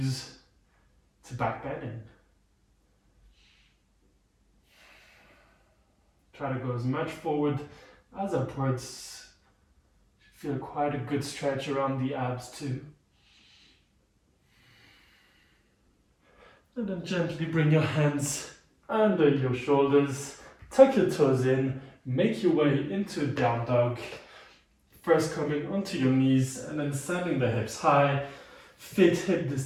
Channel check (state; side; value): identical; both; correlation 1.00